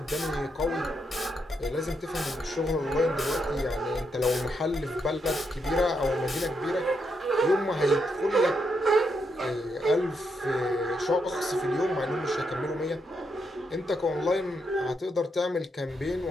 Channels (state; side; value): normal; both; correlation 0.80